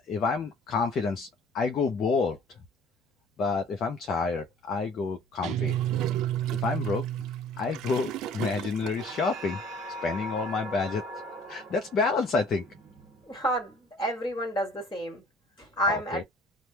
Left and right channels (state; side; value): normal; both; correlation 0.52